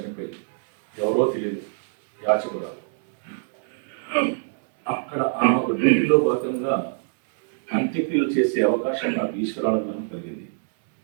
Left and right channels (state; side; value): silent; left; digital silence